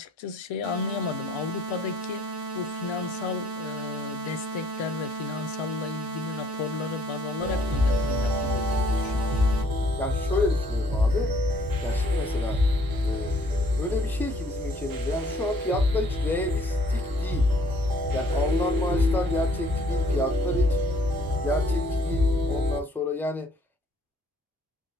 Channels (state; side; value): normal; both; correlation 0.61